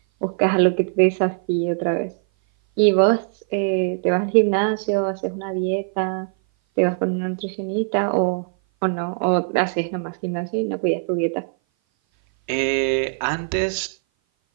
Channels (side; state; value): left; silent; 58 dB below the other